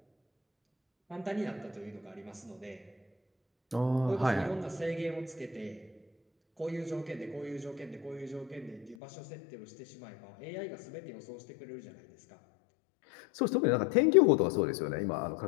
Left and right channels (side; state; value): right; drops out; at 9.0 s